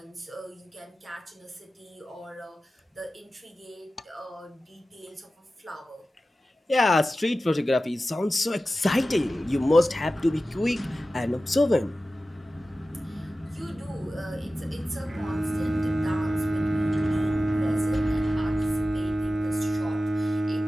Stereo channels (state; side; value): normal; both; correlation 0.95